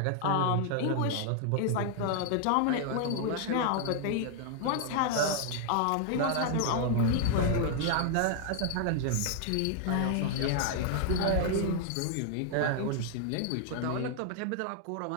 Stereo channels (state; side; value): different; both; correlation 0.00